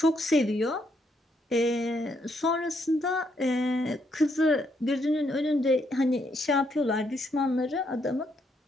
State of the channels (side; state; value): both; normal; correlation 0.75